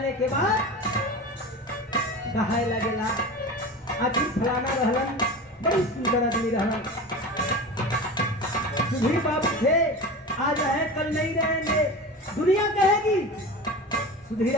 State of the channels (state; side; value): normal; both; correlation 0.31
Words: के बाद कहाय लगेला आखिर फलाना रहलन बड़ी सुंदर आदमी रहलन। सुधीर बाबू थे, आज है कल नहीं रहेंगे, दुनिया कहेगी। सुधीर